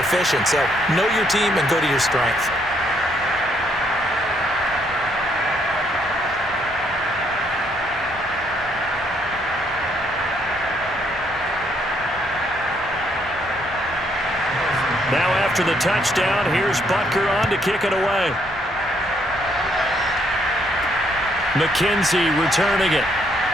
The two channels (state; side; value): normal; both; correlation 0.71